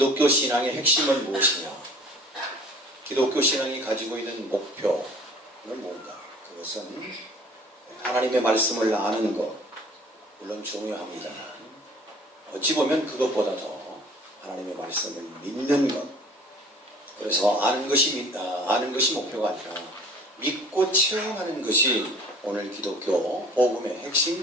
신앙의 핵심은 무엇이냐? 기독교 신앙이 가지고 있는 목표는 뭔가? 그것은 하나님의 말씀을 아는 것, 물론 중요합니다. 어찌 보면 그것보다 더 하나님의 말씀을 믿는 것. 그래서 아는 것이 목표가 아니라 믿고 체험하는 것이 오늘 기독교 복음의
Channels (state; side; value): normal; both; correlation 0.49